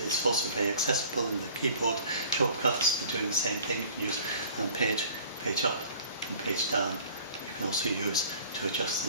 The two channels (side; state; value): both; inverted; correlation -0.50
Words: It's also very accessible in the keyboard shortcuts for doing the same thing. You can use page up and page down. You can also use to adjust